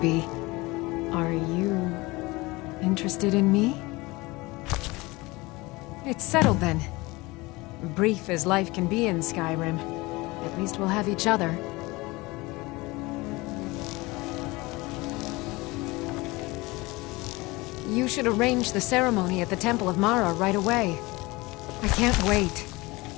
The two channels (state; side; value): quieter; right; 22.5 dB